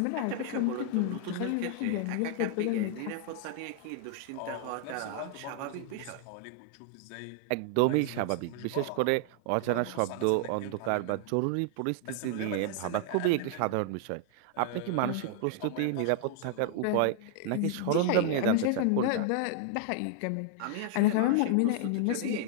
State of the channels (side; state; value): both; different; correlation 0.00